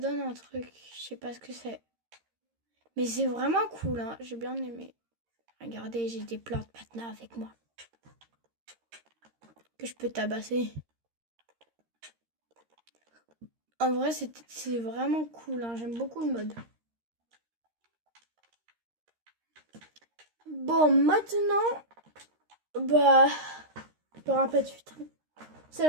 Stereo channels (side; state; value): left; late; 13 ms